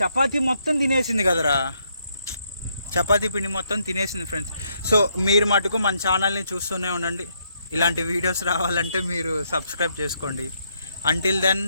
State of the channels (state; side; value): inverted; both; correlation -0.75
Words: మొత్తం తినేసింది కదరా, చపాతీ పిండి మొత్తం తినేసింది ఫ్రెండ్స్. సో మీరు మటుకు మన ఛానల్ని చూస్తూనే ఉండండి. ఇలాంటి వీడియోస్ రావాలంటే మీరు సబ్స్క్రైబ్ చేసుకోండి. Until then